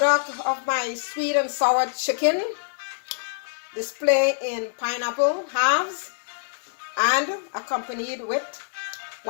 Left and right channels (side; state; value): right; silent; digital silence